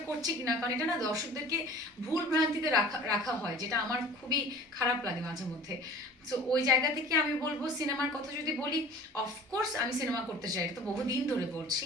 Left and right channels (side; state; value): both; normal; correlation 0.44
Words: করছি কিনা, কারণ এটা না দর্শকদেরকে ভুল ভ্রান্তিতে রাখা রাখা হয়, যেটা আমার খুবই খারাপ লাগে মাঝে মধ্যে। সো ওই জায়গা থেকে আমি বলবো, সিনেমার কথা যদি বলি, অফকোর্স আমি সিনেমা করতে চাই, এটা তো বহুদিন ধরে বলছি।